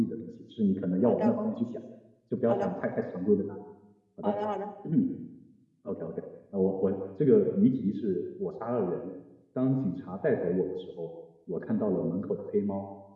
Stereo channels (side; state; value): both; identical; correlation 1.00